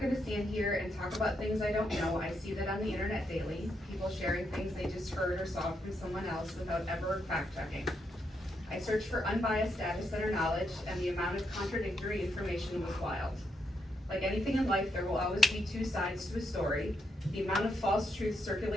gonna stand here and talk about things I don't know. I see that on the internet daily, people sharing things they just heard or saw from someone else without ever fact checking. I searched for unbiased data center knowledge, and the amount of contradictory information was wild. Like anything in life, there will always be two sides to a story. The amount of false truth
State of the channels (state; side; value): normal; both; correlation 0.80